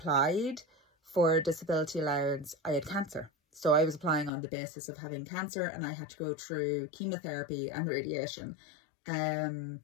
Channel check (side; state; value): right; drops out; at 4.3 s